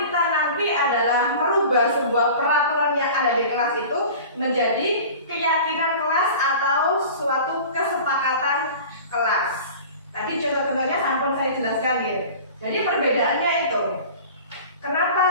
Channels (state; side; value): inverted; both; correlation -0.39